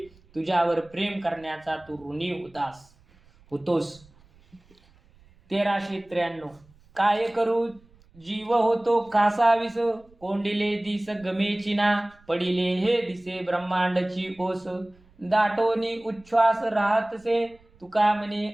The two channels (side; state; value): right; noise; rumble, 29 dB below the sound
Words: तुझ्यावर प्रेम करण्याचा तू ऋणी होतोस. 1393. काय करू जीव होतो कासावीस, कोंडिले दिस गमेची ना, पडिले हे दिसे ब्रह्मांडची ओस, दाटोनी उच्छ्वास राहतसे, तुका म्हणे